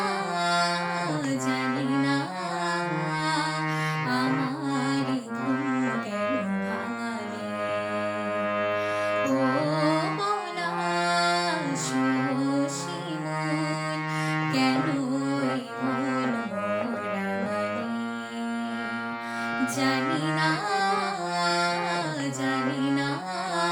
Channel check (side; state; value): both; identical; correlation 1.00